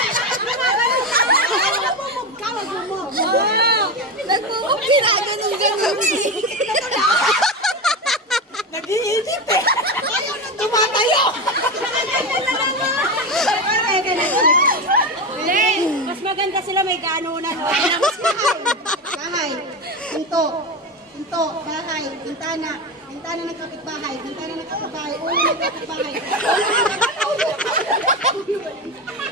Nagmumog ginaganon-ganon eh. Nag-iinit eh. Ayaw nang tumatayo. Mas maganda sila may ganunan. Bahay. Pinto. Pinto. Bahay. Bintana. Bintana ng kapitbahay. Bintana ng kapitbahay. Ulo ng kapitbahay.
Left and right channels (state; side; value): normal; both; correlation 0.18